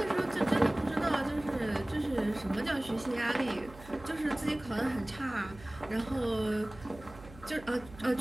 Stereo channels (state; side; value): noise; right; hum, 18 dB below the sound